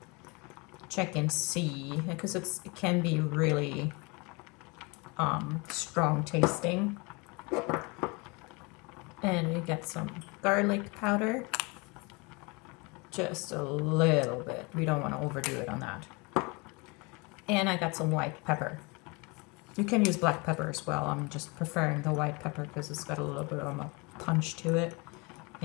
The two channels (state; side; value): quieter; right; 28.4 dB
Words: check and see, because it can be really strong tasting. And we get some garlic powder, just a little bit. We don't want to overdo it on that. And I got some white pepper. You can use black pepper as well. I'm just preferring the white pepper because it's got a little bit of a punch to it,